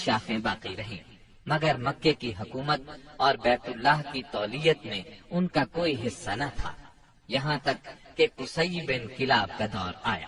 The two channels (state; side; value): identical; both; correlation 1.00